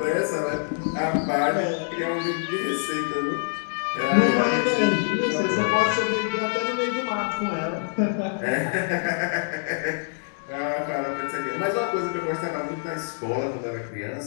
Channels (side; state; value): right; silent; digital silence